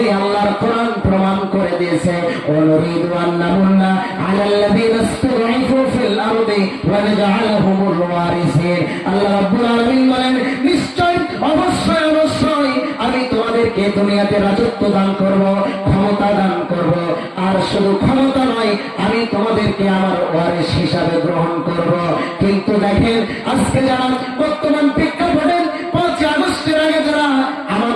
আল্লাহর কোরআন প্রমাণ করে দিয়েছে। ওয়ানুরিদু আন নামুন্না আলাল্লাযীনা ইসতাদঈফু ফিল আরদি ওয়া নাজআলাহুমুল ওয়ারিসিন। আল্লাহ রাব্বুল আলামিন বলেন, নিশ্চয় অবশ্যই অবশ্যই আমি তোমাদেরকে দুনিয়াতে রাজত্ব দান করব, ক্ষমতা দান করব, আর শুধু ক্ষমতা নয়, আমি তোমাদেরকে আমার ওয়ারিস হিসাবে গ্রহণ করব। কিন্তু দেখেন, আজকে যারা বর্তমান প্রেক্ষাপটে 5 আগস্টের আগে যারা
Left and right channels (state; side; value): identical; both; correlation 1.00